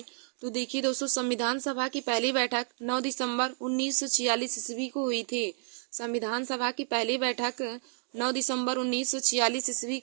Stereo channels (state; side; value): silent; left; digital silence